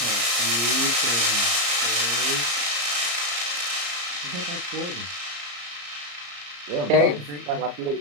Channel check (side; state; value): left; late; 34 ms